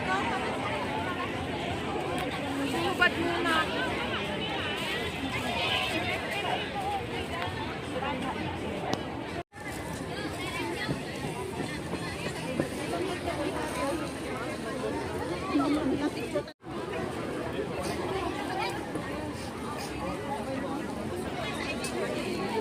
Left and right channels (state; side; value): identical; both; correlation 1.00